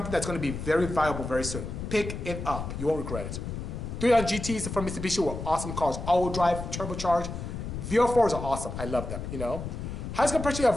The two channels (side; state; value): left; noise; rumble, 6 dB below the sound